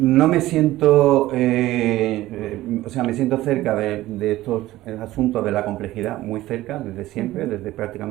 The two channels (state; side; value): quieter; left; 16.2 dB